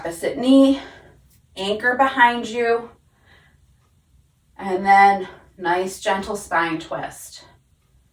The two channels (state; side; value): identical; both; correlation 1.00